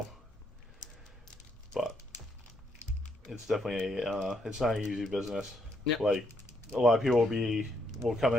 but it's definitely it's not an easy business. Yep. Like, a lot of people will come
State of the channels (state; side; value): normal; both; correlation 0.74